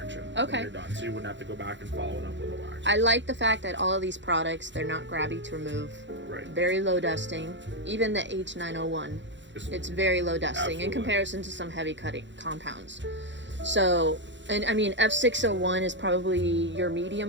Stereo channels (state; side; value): late; left; 0.53 ms